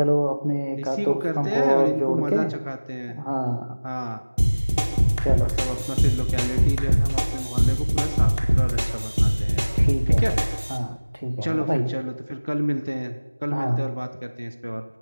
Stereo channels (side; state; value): both; inverted; correlation -1.00